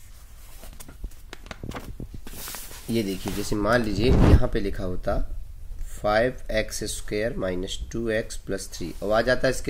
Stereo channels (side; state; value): both; identical; correlation 1.00